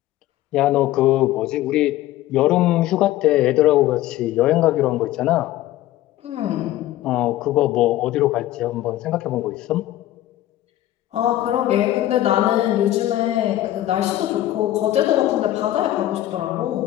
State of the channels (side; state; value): right; quieter; 14.4 dB